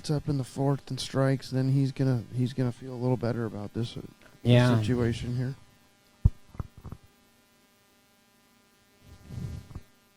up in the fourth and strikes, then he's gonna feel a little better about this situation here.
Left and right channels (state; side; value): identical; both; correlation 1.00